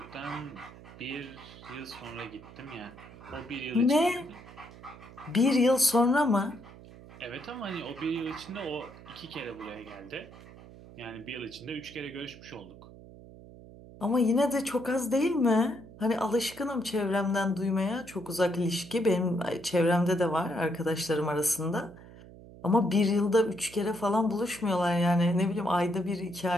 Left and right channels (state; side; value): noise; right; hum, 18 dB below the sound